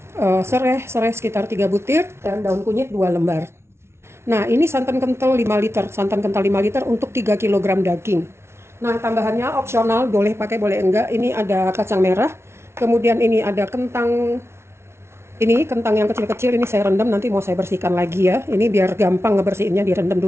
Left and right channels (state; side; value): late; left; 0.12 ms